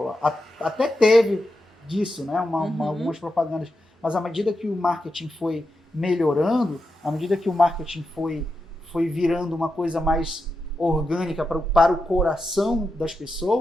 Até teve disso, né? Algumas propagandas. Mas à medida que o marketing foi melhorando, à medida que o marketing foi virando uma coisa mais orgânica para o coração das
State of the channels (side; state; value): both; normal; correlation 0.88